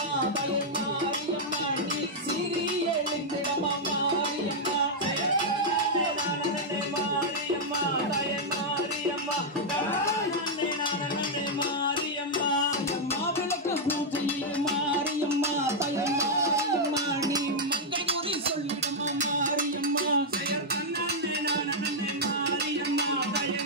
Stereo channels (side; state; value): both; normal; correlation -0.04